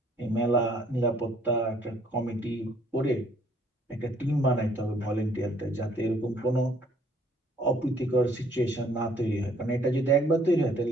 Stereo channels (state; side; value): normal; both; correlation 0.62